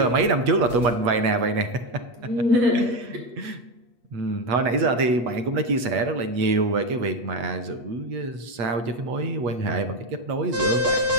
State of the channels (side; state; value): left; late; 8.3 ms